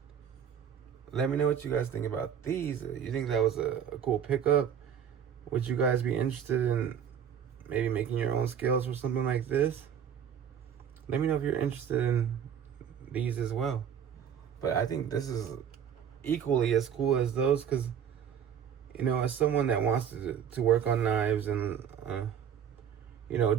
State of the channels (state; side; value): quieter; left; 8.4 dB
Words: Let me know what you guys think about these. You think that was a cool pickup? Would you guys be interested in maybe making your own scales for something like this? Let me know if you're interested in these as well. But I think this is equally as cool as those, because as someone that wants to work on knives and